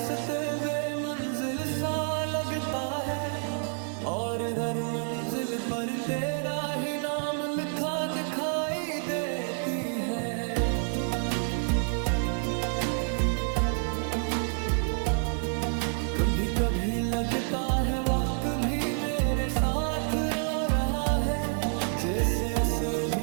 बेमंजिल सा लगता है और हर मंजिल पर तेरा ही नाम लिखा दिखाई देती है। कभी कभी लगता है वक्त भी मेरे साथ रो रहा है, जैसे से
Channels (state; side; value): silent; left; 59 dB below the other